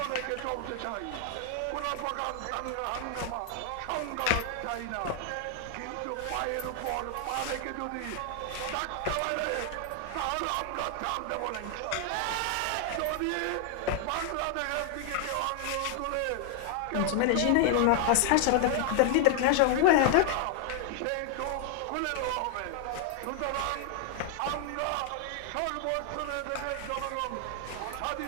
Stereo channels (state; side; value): different; both; correlation 0.00